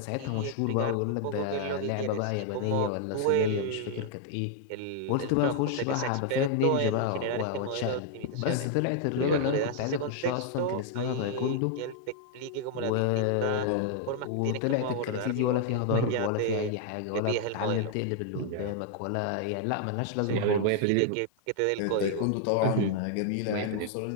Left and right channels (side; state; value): both; different; correlation 0.00